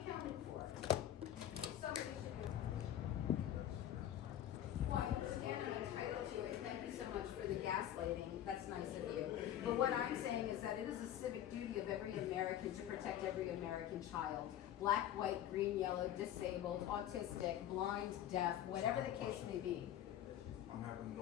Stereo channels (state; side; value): quieter; right; 11.5 dB